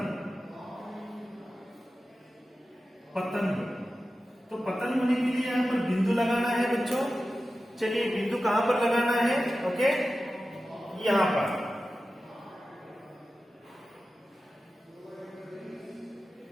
तो पतंग होने के लिए यहां पर बिंदु लगाना है बच्चों। चलिए बिंदु कहां पर लगाना है? ओके, यहां पर।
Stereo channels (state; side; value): normal; both; correlation 0.94